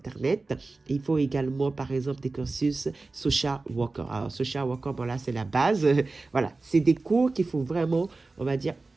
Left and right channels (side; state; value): left; quieter; 3.6 dB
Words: Il faut également, par exemple, des cursus social worker. Alors, social worker, bon là, c'est la base. Voilà, c'est des cours qu'il faut vraiment, on va dire,